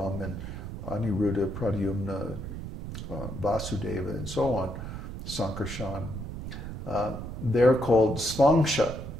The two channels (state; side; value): noise; right; rumble, 8 dB below the sound